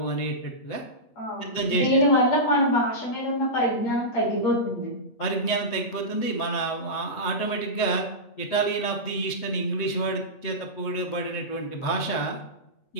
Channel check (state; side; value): late; right; 7.8 ms